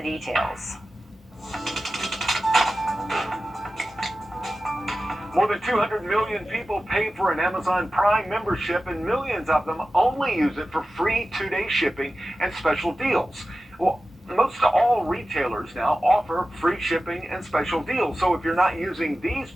More than 200 million people pay for an Amazon Prime membership, and millions of them only use it for free 2-day shipping and special deals. Well, most all retailers now offer free shipping and special deals. So if you're not using these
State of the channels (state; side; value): normal; both; correlation 0.94